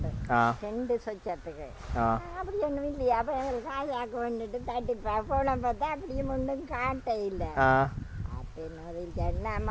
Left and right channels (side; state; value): both; identical; correlation 1.00